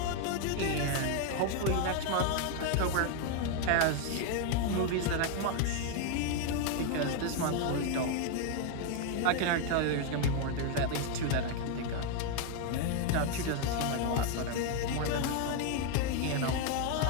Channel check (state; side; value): different; both; correlation 0.01